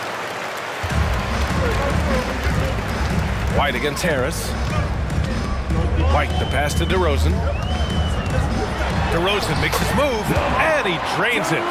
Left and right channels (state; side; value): identical; both; correlation 1.00